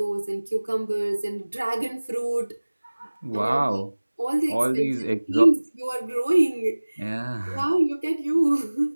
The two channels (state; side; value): inverted; both; correlation -1.00